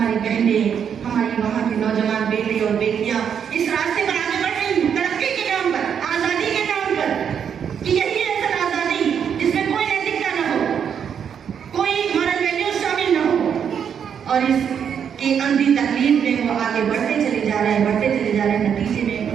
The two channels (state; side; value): quieter; left; 7.8 dB